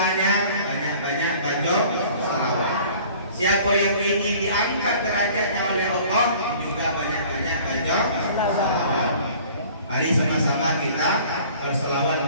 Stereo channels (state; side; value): inverted; both; correlation -0.49